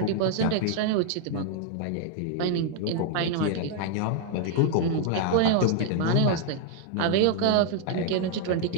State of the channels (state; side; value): different; both; correlation 0.00